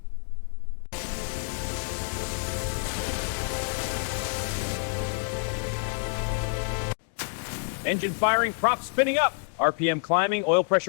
Engine firing, prop spinning up. RPM climbing, oil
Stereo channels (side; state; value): right; silent; digital silence